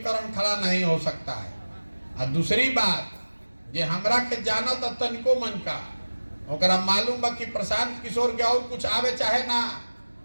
खड़ा नहीं हो सकता है। और दूसरी बात, जे हमरा के जानत तनिको मन का, ओकरा मालूम बा कि प्रशांत किशोर के और कुछ आवे चाहे ना,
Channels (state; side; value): inverted; both; correlation -1.00